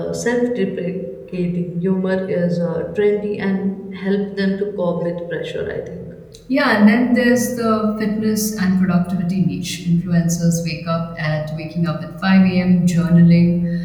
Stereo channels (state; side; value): identical; both; correlation 1.00